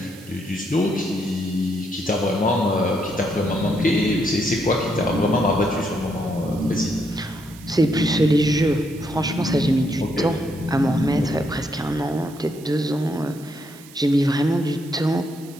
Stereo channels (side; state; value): right; noise; hiss, 21 dB below the sound